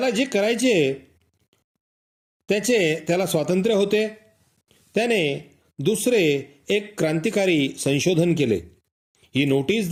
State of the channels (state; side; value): identical; both; correlation 1.00